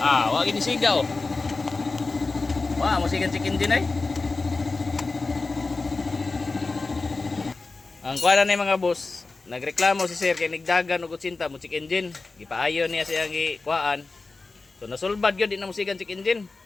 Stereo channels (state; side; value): quieter; right; 3.7 dB